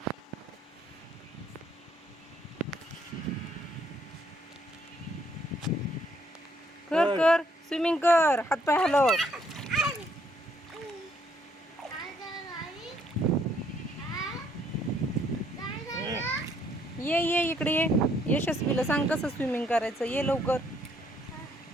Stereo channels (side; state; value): both; normal; correlation 0.68